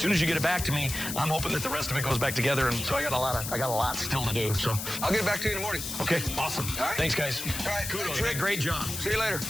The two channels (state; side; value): noise; left; hiss, 6 dB below the sound